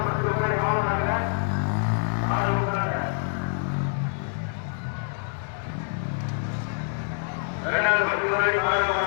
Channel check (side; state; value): right; silent; 61 dB below the other